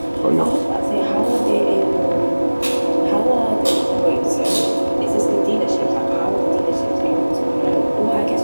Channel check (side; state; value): both; inverted; correlation -1.00